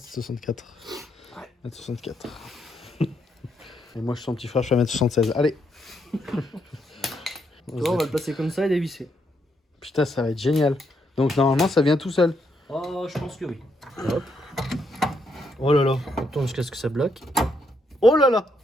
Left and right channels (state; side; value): normal; both; correlation 0.77